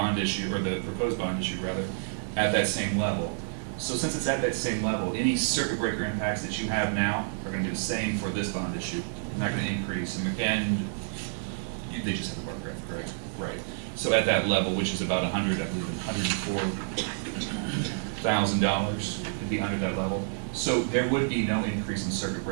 issue, or the proposed bond issue rather, at that same level. So since it's at that same level, any circuit breaker impacts that you have now are going to be the same for this bond issue. They're not going to increase. And they just have the bar graph, correct? Right. So at that level, which is about $104,000, it'd be under that level. So there would be no increase in circuit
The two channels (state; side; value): silent; left; 59 dB below the other